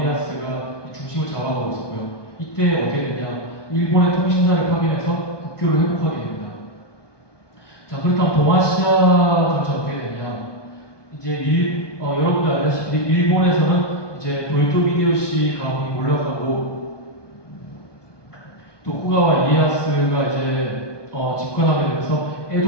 중심을 잡아가고 있었고요. 이때 어떻게 되냐? 일본의 통신사를 파견해서 국교를 회복하게 됩니다. 자, 그렇다면 동아시아 전체 어떻게 되냐? 여러분들 알다시피 일본에서는 이제 도요토 히데요시 가문이 올라가고 또 후가와 이에야스가 이제 집권하게 되면서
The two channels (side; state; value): right; late; 1.2 ms